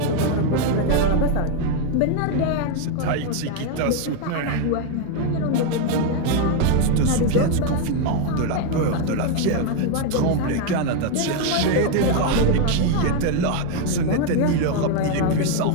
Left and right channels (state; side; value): different; both; correlation 0.01